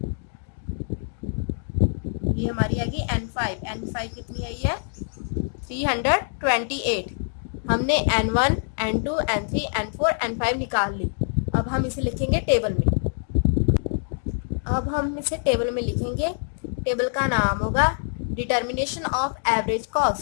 ये हमारी आ गई N5 कितनी आई है, 328। हमने N1, N2, N3, N4, N5 निकाल ली। अब हम इसे लिखेंगे टेबल में, टेबल का नाम होगा डिटर्मिनेशन ऑफ एवरेज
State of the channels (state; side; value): silent; right; digital silence